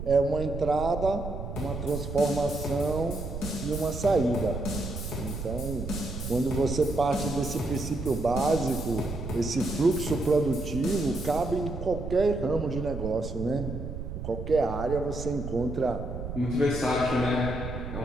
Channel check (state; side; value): noise; right; rumble, 7 dB below the sound